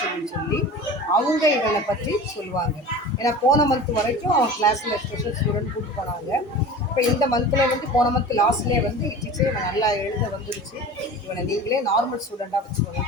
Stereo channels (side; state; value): both; normal; correlation 0.36